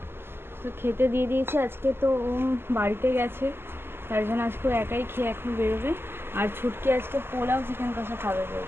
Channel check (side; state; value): left; late; 0.11 ms